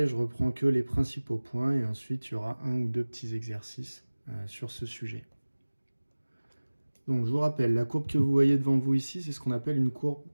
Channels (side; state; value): both; inverted; correlation -1.00